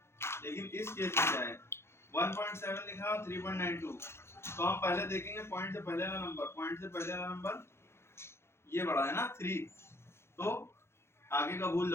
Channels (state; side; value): late; right; 0.12 ms